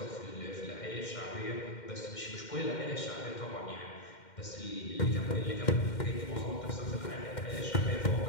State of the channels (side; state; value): right; late; 2.1 ms